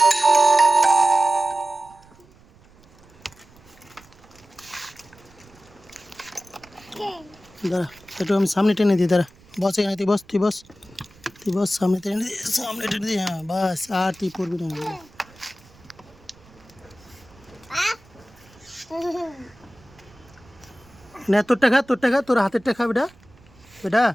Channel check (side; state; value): right; noise; rumble, 27 dB below the sound